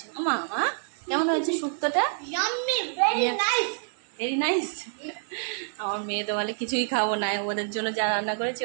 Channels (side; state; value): left; silent; 60 dB below the other